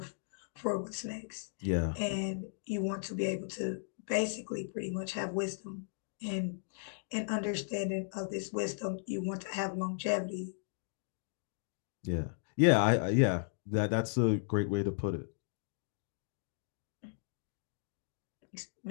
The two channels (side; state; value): right; silent; digital silence